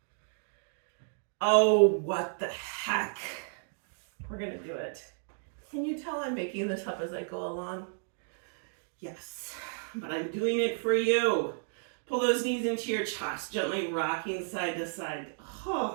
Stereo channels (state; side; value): silent; left; digital silence